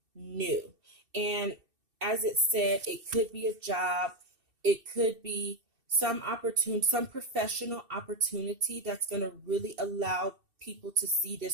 new. And as it said, it could be a job, it could be some opportunity, some professional opportunity that's going to really allow people to see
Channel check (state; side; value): late; left; 2.7 ms